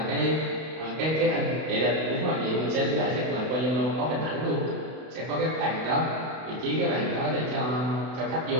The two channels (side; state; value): left; late; 32 ms